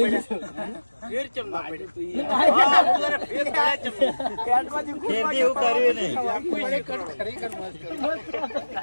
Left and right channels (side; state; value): both; inverted; correlation -1.00